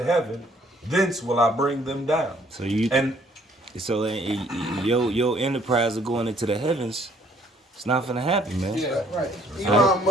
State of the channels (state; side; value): normal; both; correlation 0.62